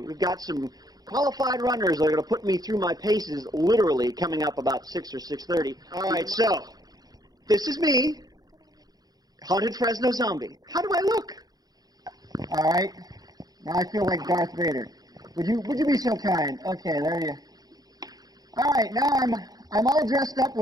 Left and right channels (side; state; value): left; late; 0.19 ms